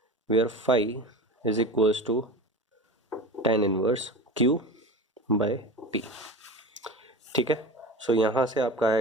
where phi is equals to tan inverse Q by P। ठीक है, सो यहाँ से आपका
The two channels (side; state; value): both; normal; correlation 0.31